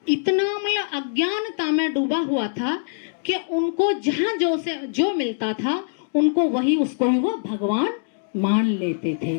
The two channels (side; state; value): right; silent; digital silence